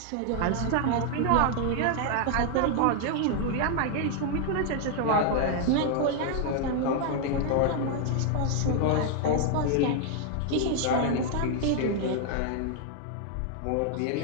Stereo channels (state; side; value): different; both; correlation 0.00